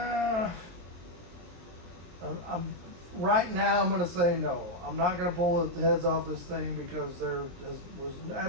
right now I'm going to say no. I'm not going to pull the heads off this thing because there was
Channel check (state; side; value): late; left; 23 ms